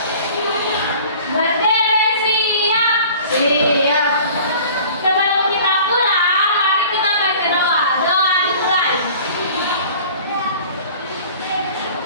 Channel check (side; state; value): both; inverted; correlation -0.46